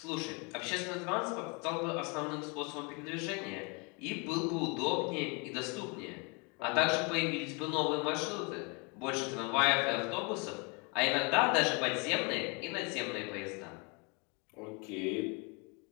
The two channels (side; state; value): right; quieter; 32.3 dB